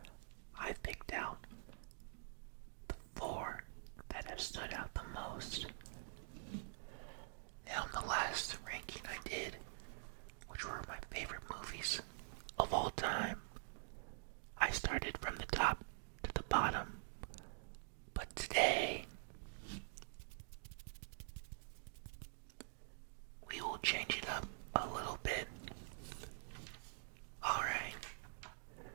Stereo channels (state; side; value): silent; left; digital silence